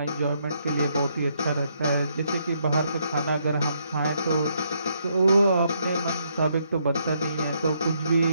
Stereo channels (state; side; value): inverted; both; correlation -0.74